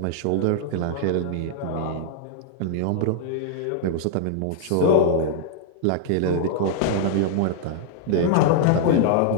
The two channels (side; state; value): both; different; correlation -0.01